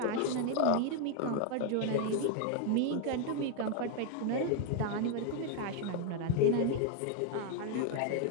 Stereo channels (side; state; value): both; different; correlation 0.01